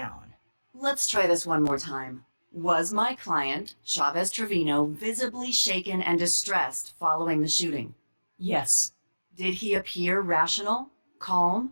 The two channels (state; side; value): inverted; both; correlation -1.00